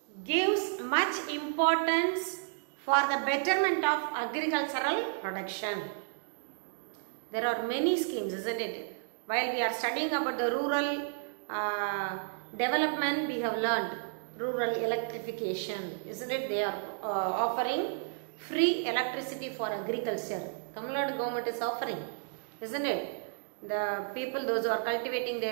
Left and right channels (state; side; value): silent; left; digital silence